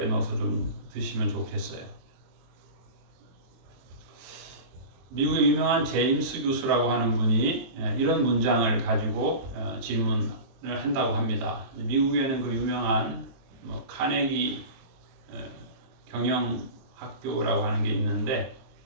넣어서 좀 드시면 좋겠어요. 미국의 유명한 제임스 교수라고 하는 분이 이런 문장을 가지고 질문을 한다고 합니다. 미국에는 그 유명한 카네기 경영학교라고 하는 게 있는데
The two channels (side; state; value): left; late; 23 ms